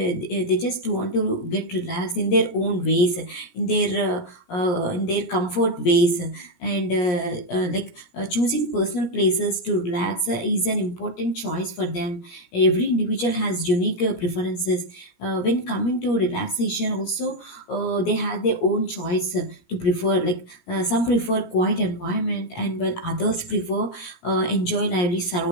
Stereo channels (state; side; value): late; right; 17 ms